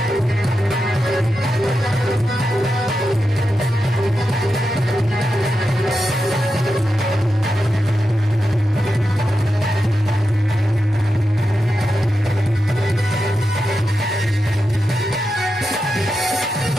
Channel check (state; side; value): normal; both; correlation 0.89